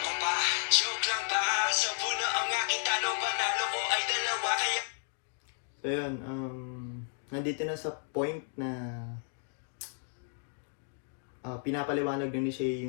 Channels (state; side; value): silent; right; digital silence